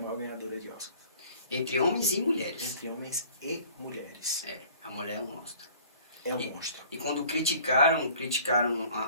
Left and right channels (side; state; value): both; inverted; correlation -0.51